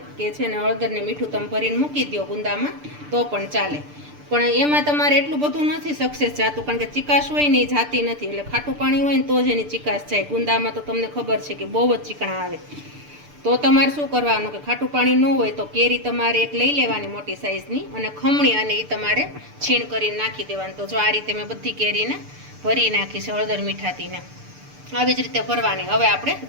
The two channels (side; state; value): left; late; 6.8 ms